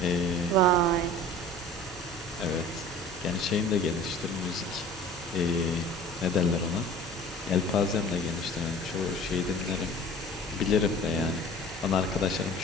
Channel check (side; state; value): both; normal; correlation 0.42